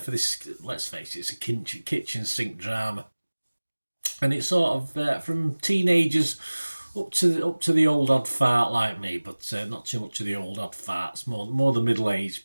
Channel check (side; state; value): both; inverted; correlation -1.00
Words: this. Let's face it, it's a kitchen sink drama, and it's sort of from teenagers up to the old odd fart like me, but not too much of the old odd farts. More the